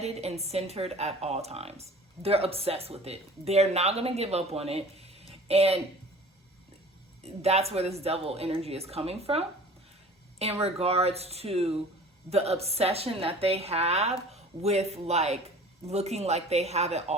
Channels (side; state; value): both; normal; correlation 0.44